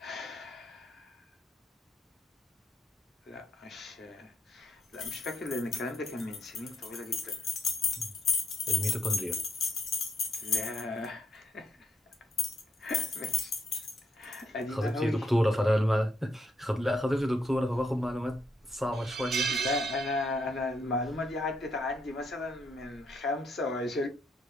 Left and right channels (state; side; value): normal; both; correlation 0.76